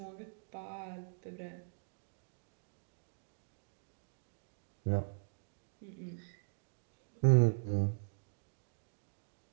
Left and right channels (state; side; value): silent; left; digital silence